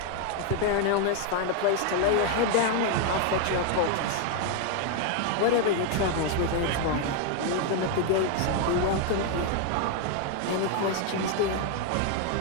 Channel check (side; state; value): both; different; correlation 0.00